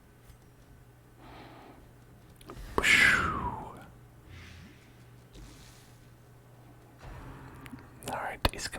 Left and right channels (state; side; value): identical; both; correlation 1.00